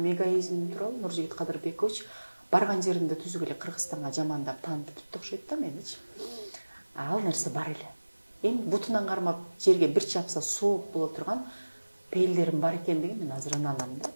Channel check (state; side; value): inverted; both; correlation -1.00